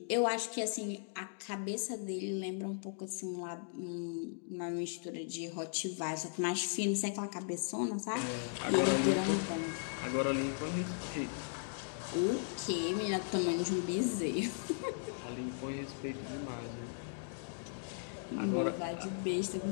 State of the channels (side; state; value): right; silent; digital silence